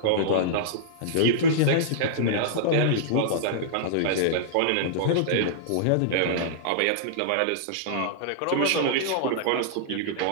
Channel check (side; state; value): both; different; correlation -0.02